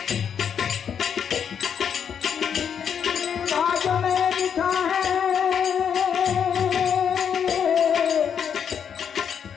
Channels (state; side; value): quieter; right; 7.8 dB